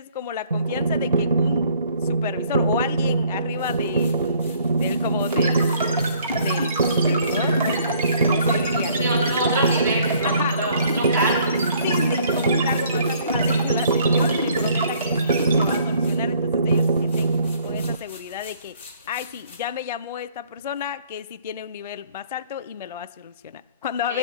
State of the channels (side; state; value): both; inverted; correlation -0.60